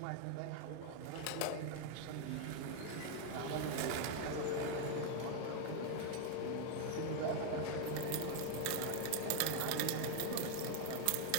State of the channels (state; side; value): different; both; correlation 0.00